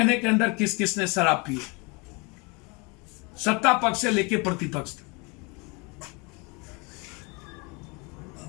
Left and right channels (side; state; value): right; quieter; 29.3 dB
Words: के अंदर किस किस ने शराब पी, सत्ता पक्ष से लेकर प्रतिपक्ष तक।